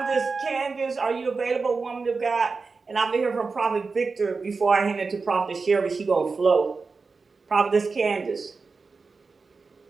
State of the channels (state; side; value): quieter; left; 4.4 dB